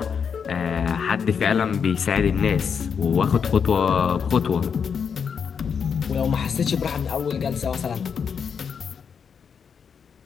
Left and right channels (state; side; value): quieter; right; 6.7 dB